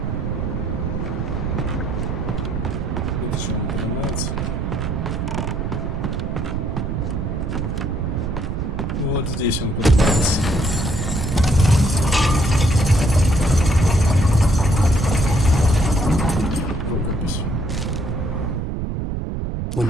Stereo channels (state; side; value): noise; right; rumble, 2 dB below the sound